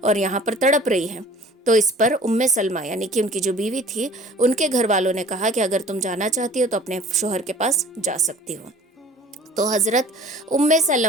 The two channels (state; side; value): normal; both; correlation 0.48